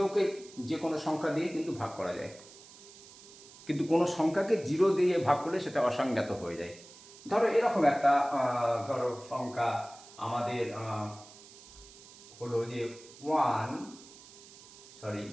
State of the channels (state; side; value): noise; right; hiss, 20 dB below the sound